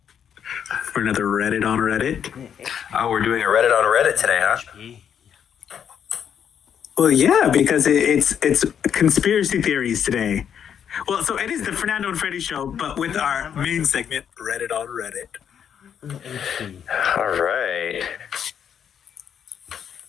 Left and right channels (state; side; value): quieter; right; 8.4 dB